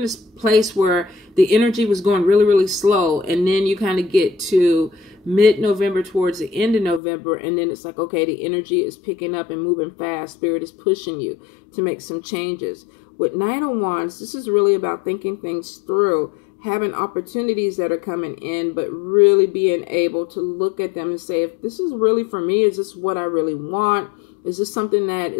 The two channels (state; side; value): drops out; right; at 7.0 s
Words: this place where the energy was going really, really slow. And then you kind of get to mid-November, towards the end of November. And then it's like, okay, the energy is picking up and moving fast. Spirit is pushing you to make some changes. With Knight of Wands, this is really about thinking things through, having opportunities that are coming in, but really being able to look at them and say, if this is really for me, is this what I really want? Is this something that